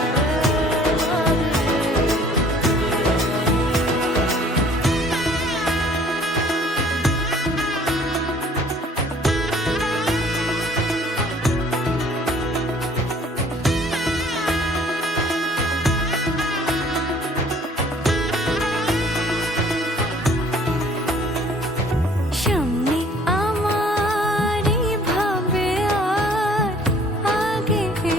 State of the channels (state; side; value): normal; both; correlation 0.55